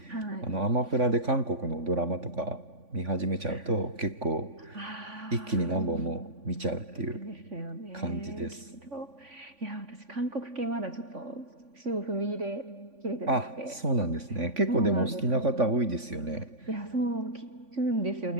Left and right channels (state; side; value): late; left; 3.5 ms